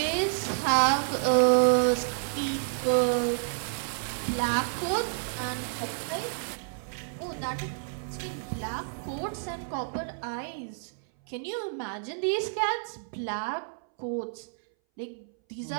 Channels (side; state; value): left; silent; 58 dB below the other